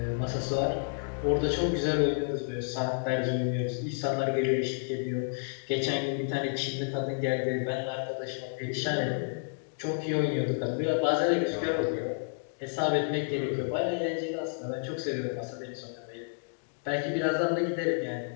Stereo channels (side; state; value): right; silent; digital silence